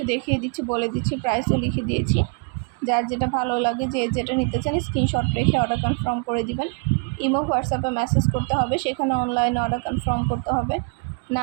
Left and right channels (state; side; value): quieter; left; 36.5 dB